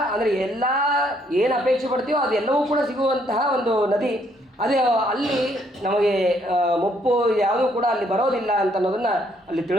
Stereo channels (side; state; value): both; normal; correlation 0.69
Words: ಅಂದರೆ ಎಲ್ಲ ಏನು ಅಪೇಕ್ಷೆ ಪಡ್ತೀವೋ ಅದೆಲ್ಲವೂ ಕೂಡ ಸಿಗುವಂತಹ ಒಂದು ನದಿ. ಅದೇ ಅಲ್ಲಿ ನಮಗೆ ಮುಪ್ಪು ಯಾವುದೂ ಕೂಡ ಅಲ್ಲಿ ಬರೋದಿಲ್ಲ ಅಂತ ಅನ್ನೋದನ್ನು ಅಲ್ಲಿ